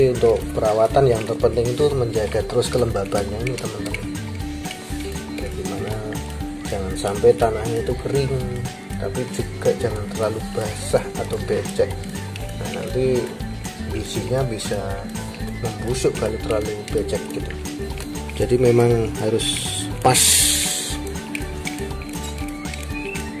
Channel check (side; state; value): both; identical; correlation 1.00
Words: untuk perawatan yang terpenting itu menjaga terus kelembabannya ini teman-teman. Bagaimana jangan sampai tanahnya itu kering, tapi juga jangan terlalu basah atau becek. Nah nanti bijinya bisa membusuk kalau terlalu becek gitu. Jadi memang harus pas.